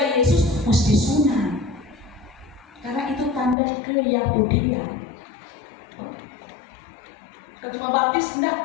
Yesus mesti sunat, karena itu tanda keyahudian. Kalau cuma baptis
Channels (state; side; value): drops out; right; at 3.6 s